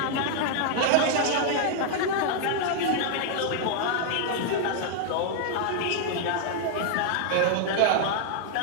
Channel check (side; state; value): both; different; correlation 0.00